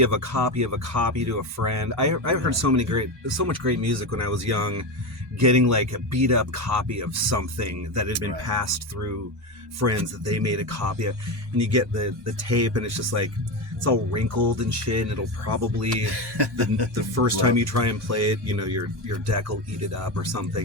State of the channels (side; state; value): both; normal; correlation 0.17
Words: of a copy of a copy to a friend. I heard so much great music when I was young, getting like a beat up copy of something that had been passed through friends that they made a copy of, and you get the tape, and it's just like, it's all wrinkled and shit, and it'll probably the first time you try and play it, your deck will eat it up or